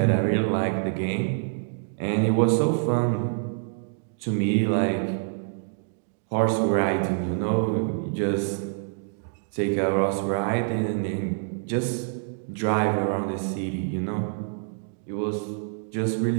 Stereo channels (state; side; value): silent; left; digital silence